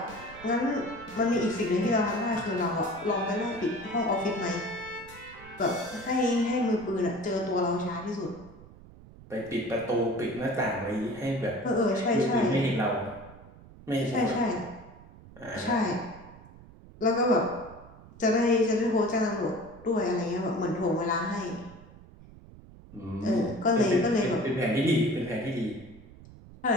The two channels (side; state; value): right; noise; rumble, 20 dB below the sound